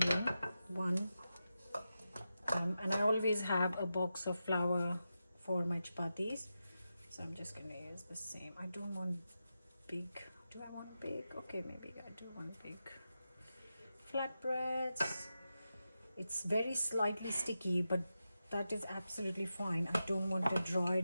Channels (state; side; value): inverted; both; correlation -0.90